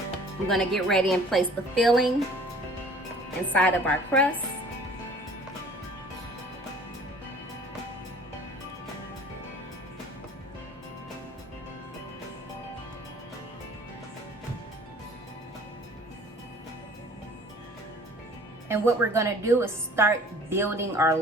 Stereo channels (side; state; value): both; normal; correlation 0.50